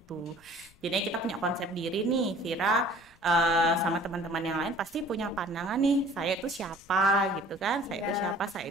Jadi kita punya konsep diri nih, Vira sama teman-teman yang lain pasti punya pandangan nih, saya itu siapa gitu kan? Saya itu siapa?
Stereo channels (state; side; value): noise; left; rumble, 28 dB below the sound